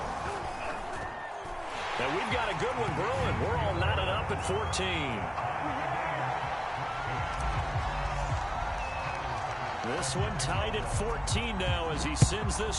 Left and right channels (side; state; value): both; identical; correlation 1.00